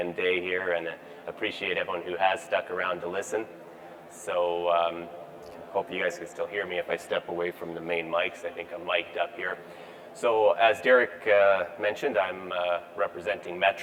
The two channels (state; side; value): identical; both; correlation 1.00